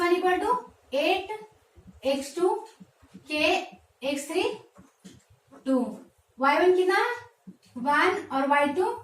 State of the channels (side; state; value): both; identical; correlation 1.00